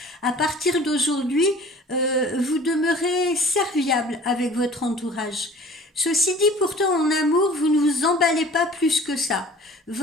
À partir d'aujourd'hui, vous demeurez serviable avec votre entourage. Ceci dit, pourtant, en amour, vous ne vous emballez pas plus que ça.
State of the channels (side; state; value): both; normal; correlation 0.47